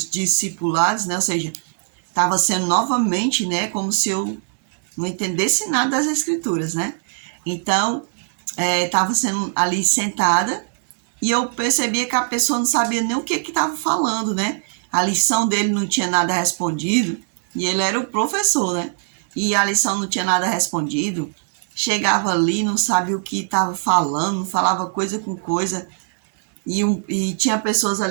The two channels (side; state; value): left; silent; digital silence